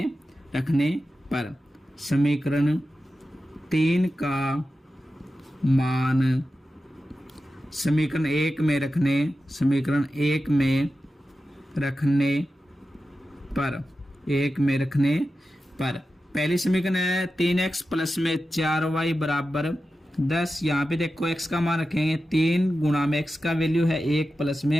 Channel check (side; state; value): both; normal; correlation 0.92